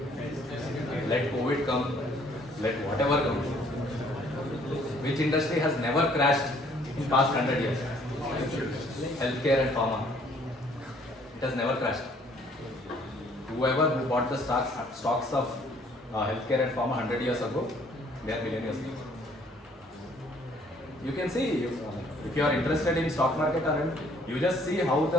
Let COVID come, let whatever come. Which industry has never crashed in past 100 years? Healthcare and pharma. It has never crashed. Whoever who bought the stocks of healthcare and pharma 100 years ago, they are millionaires. You can see, if you are interested in stock market, you just see how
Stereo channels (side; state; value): both; normal; correlation 0.61